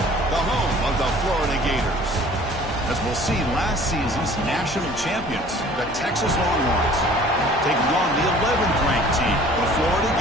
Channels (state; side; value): normal; both; correlation 0.50